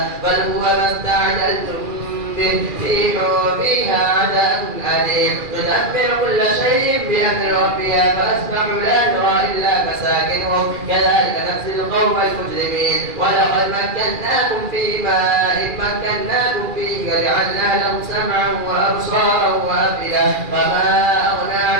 بل هو ما استعجلتم به ريح فيها عذاب أليم تدمر كل شيء بأمر ربها فأصبحوا لا ترى إلا مساكنهم كذلك نجزي القوم المجرمين. ولقد مكناكم في ماء مكناكم فيه وجعلنا لهم سمعا وأبصارا وأفئدة فما أغنى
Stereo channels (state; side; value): late; left; 2.4 ms